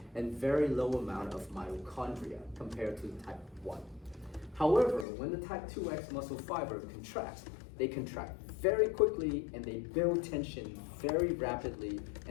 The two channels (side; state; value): right; drops out; at 5.1 s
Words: and very low amount of mitochondria compared to the type 1. However, when the type 2X muscle fiber contracts, they contract very quickly and they build tension very rapidly